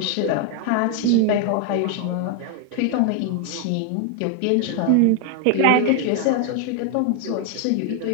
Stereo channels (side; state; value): both; different; correlation 0.00